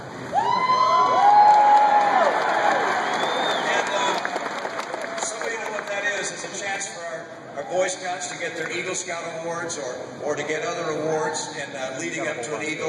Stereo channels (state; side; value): identical; both; correlation 1.00